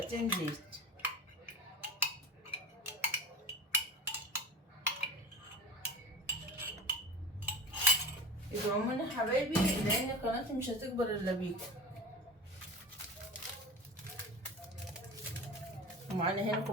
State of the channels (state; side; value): normal; both; correlation 0.32